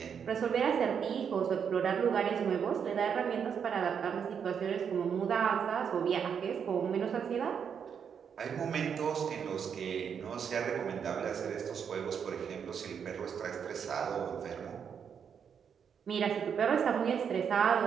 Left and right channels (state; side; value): quieter; left; 7.3 dB